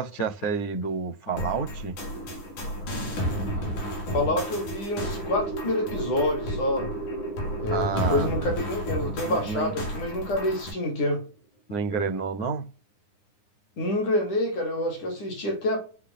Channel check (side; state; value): right; late; 9.8 ms